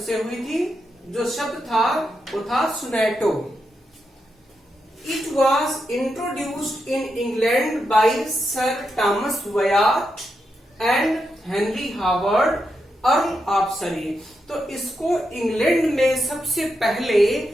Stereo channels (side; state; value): both; normal; correlation 0.85